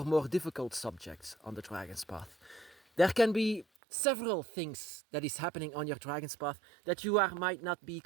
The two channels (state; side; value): drops out; left; at 3.7 s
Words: more difficult subjects on the dragon's path. There can be several things that is happening on your dragon's path that you might not be